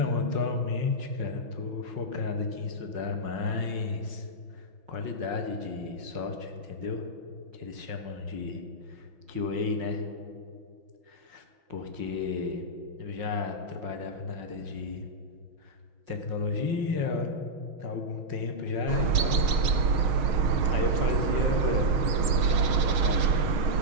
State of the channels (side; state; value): left; late; 6.5 ms